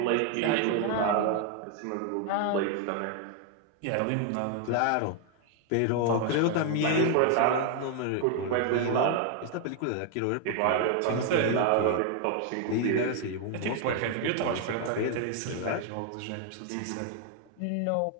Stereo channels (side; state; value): both; different; correlation 0.00